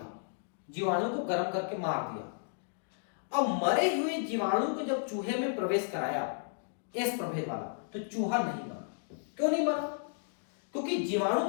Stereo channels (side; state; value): right; silent; digital silence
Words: जीवाणु को गर्म करके मार दिया। अब मरे हुए जीवाणु को जब चूहे में प्रवेश कराया, एस प्रभेद वाला, तो चूहा नहीं मरा। क्यों नहीं मरा? क्योंकि जीवाणु